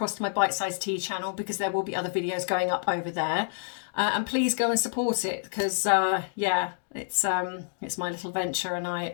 to my Bite Size Tea channel, because there will be other videos going up over there. And please go and support it, because yeah, it's my little venture, and I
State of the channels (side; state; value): right; silent; digital silence